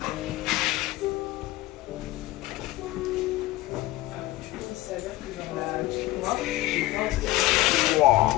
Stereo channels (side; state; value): right; quieter; 17.6 dB